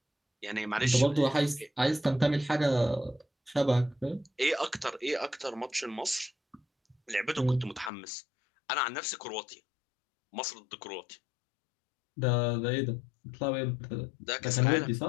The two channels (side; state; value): right; drops out; at 7.9 s